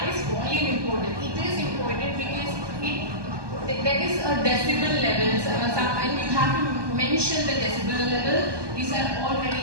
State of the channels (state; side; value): late; left; 1.2 ms